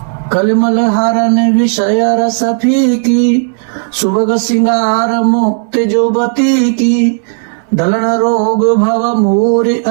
कलिमल हरण विषय रस फीकी सुभग सिंगार मुक्त जुबती की दलन रोग भव मूर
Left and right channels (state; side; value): silent; left; digital silence